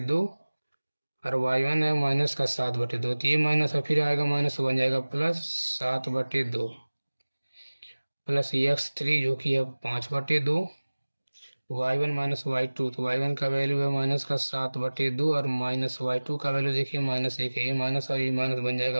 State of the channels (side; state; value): both; inverted; correlation -1.00